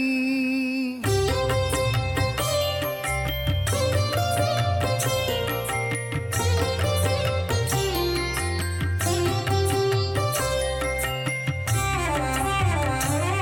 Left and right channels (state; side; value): identical; both; correlation 1.00